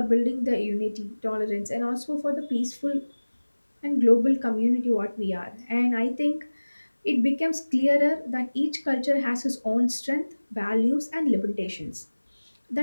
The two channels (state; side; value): inverted; both; correlation -1.00